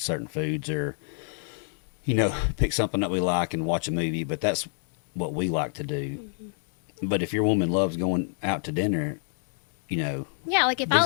foods or, pick something that we like and watch a movie. But that's what we like to do. But if your woman loves going out to dinner, Yeah, like if these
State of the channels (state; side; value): silent; right; 60 dB below the other